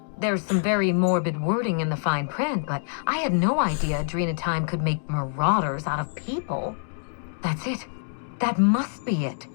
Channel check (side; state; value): right; silent; digital silence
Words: there's some very morbid wording in the fine print, but I had no idea adrenotime could make marauders out of people. That's it. That must be it.